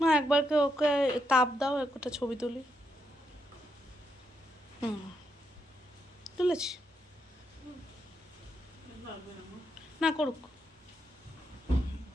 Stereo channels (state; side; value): normal; both; correlation 0.80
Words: একবার ওকে তাপ দাও, একটা ছবি তুলি। তুলেছি না, করুক।